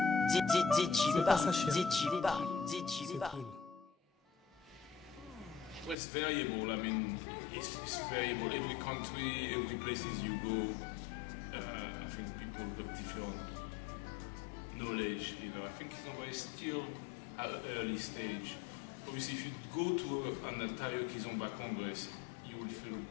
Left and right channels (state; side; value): drops out; right; at 6.0 s